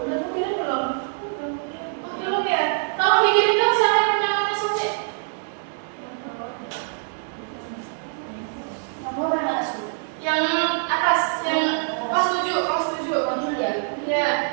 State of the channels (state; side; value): silent; left; 63 dB below the other